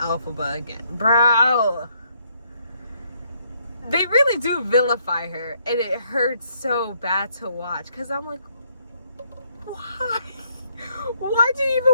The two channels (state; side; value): inverted; both; correlation -0.71